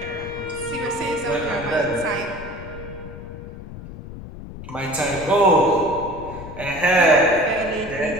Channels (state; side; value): noise; left; rumble, 13 dB below the sound